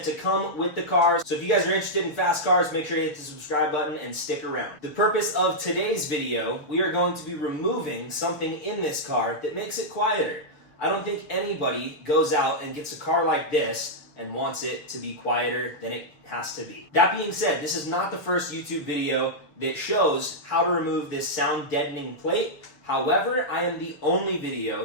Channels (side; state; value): right; late; 6.5 ms